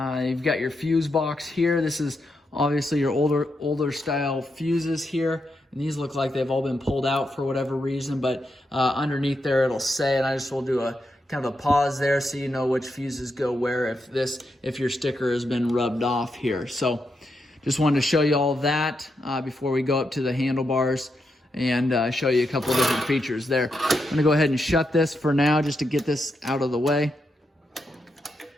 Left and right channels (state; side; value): normal; both; correlation 0.84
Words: got your fuse box here. This is obviously your older style fuses here. And these look like they've all been pulled out for whatever reason, but underneath there it'll say, and I just will do a kind of a pause there so you know which fuses go where if your sticker has been rubbed off here. So just wanted to show you all that before we go up to the handlebars and show you a couple of different features there. I'm gonna go ahead and shut this for now just to get this out of the way.